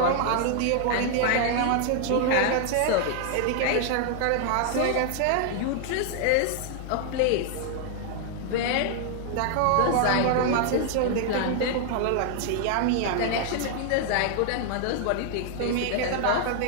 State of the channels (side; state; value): both; different; correlation 0.00